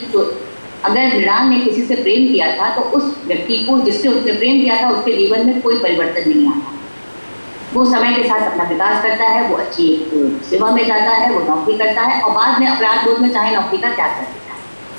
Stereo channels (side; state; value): both; inverted; correlation -1.00